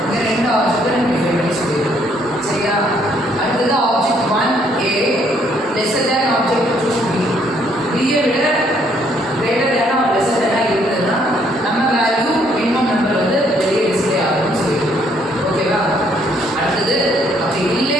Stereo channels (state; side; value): normal; both; correlation 0.67